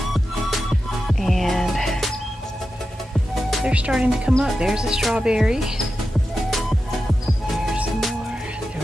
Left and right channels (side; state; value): both; normal; correlation 0.91